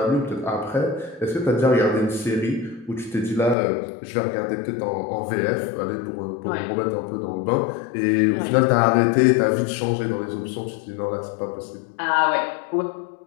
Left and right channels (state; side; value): drops out; right; at 3.6 s